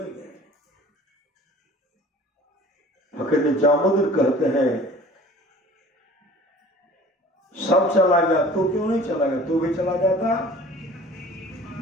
गए। फकीर निजामुद्दीन कहते हैं सब चला गया, तू क्यों नहीं चला गया, तू भी चला जाता।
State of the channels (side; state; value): both; normal; correlation 0.46